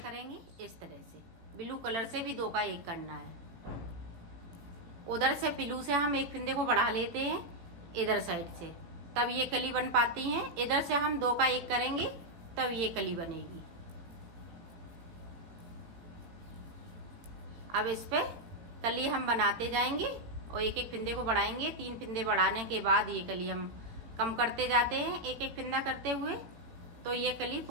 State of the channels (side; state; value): left; late; 17 ms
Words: इस तरह से। ब्लू कलर से भी 2 का 1 करना है। उधर से ब्लू से हम 1 फिंदे को बढ़ा लेते हैं इधर साइड से, तब ये कली बन पाती हैं। इधर से हम 2 का 1 करेंगे, तब ये कली बनेगी। अब इस पे कली हम बनाते जाएंगे और 1-1 फिंदे को बढ़ाएंगे। 3 फिंदे बढ़ाने के बाद ये कली हम कम करते जाते हैं 1-1 फिंदा करते हुए, तो ये कली